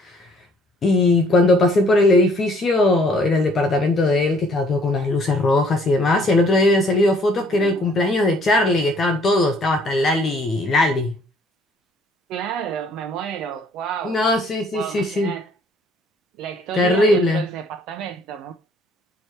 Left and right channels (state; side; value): normal; both; correlation 0.61